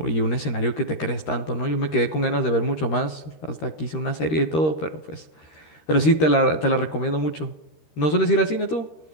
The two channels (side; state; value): right; late; 13 ms